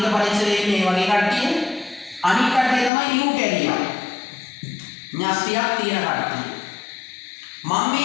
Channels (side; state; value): right; drops out; at 2.9 s